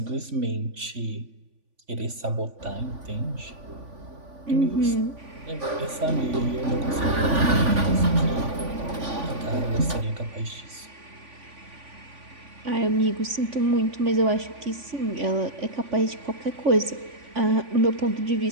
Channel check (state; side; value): late; left; 3.5 ms